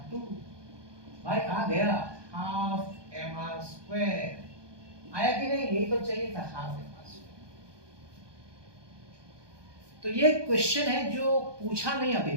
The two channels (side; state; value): left; late; 1.2 ms